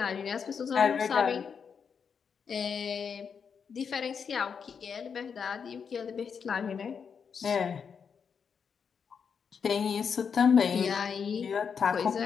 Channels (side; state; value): right; quieter; 6.5 dB